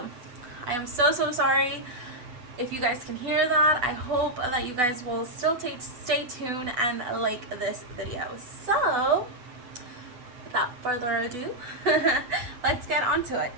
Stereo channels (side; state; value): left; late; 8.1 ms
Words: I am so sorry if you guys can hear that. I hope that you guys will still stay tuned and like this video. So without further ado, let's get on to it.